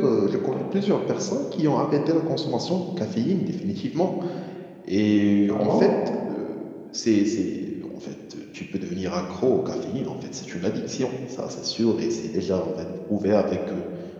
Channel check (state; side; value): identical; both; correlation 1.00